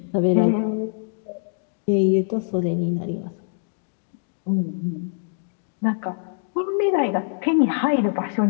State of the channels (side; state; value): right; silent; digital silence